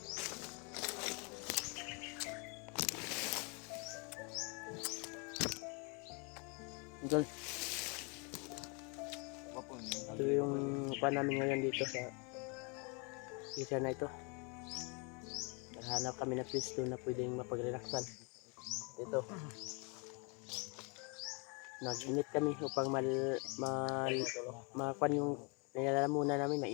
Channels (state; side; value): quieter; right; 33.3 dB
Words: Idol, Wapon. ito yung kuan namin ngayon dito sa isa na ito. Naghanap kami na pwesto na pwedeng mapag-relaxan. Ito. Nag-init kami upang makuan yung nilalamunan namin,